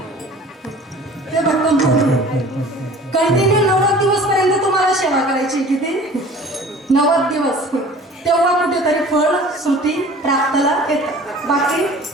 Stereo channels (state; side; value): normal; both; correlation 0.45